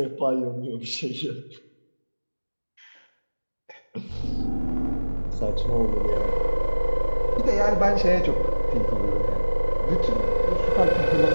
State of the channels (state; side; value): inverted; both; correlation -1.00